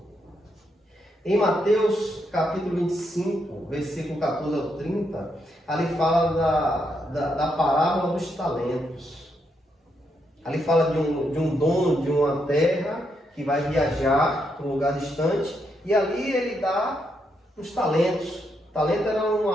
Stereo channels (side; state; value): both; normal; correlation 0.79